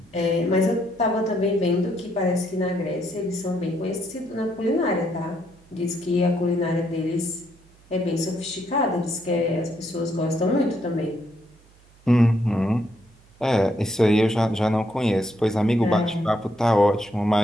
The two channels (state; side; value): noise; right; hum, 28 dB below the sound